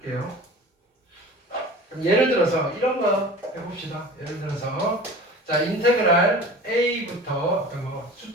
그럼 예를 들어서 이런 거 해봅시다. 예를 들어서 자, 인테그랄 a부터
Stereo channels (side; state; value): both; normal; correlation 0.39